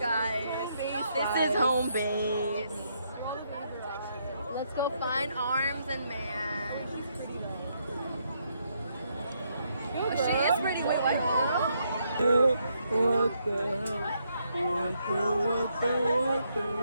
This is home base. Let's go find Arms and Man. Oh, she is pretty. Wait, what?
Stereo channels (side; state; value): both; inverted; correlation -0.76